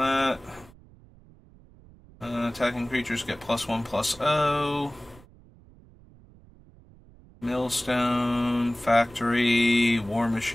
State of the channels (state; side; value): noise; right; rumble, 25 dB below the sound